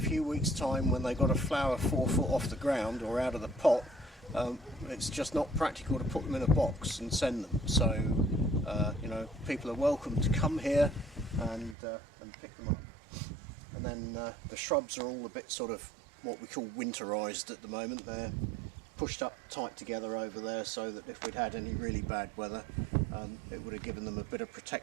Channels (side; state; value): left; drops out; at 11.8 s